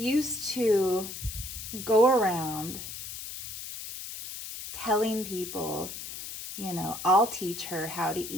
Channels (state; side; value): noise; left; hiss, 9 dB below the sound